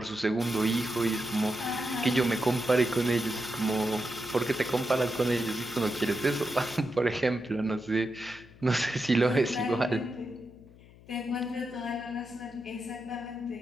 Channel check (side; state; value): left; noise; hum, 23 dB below the sound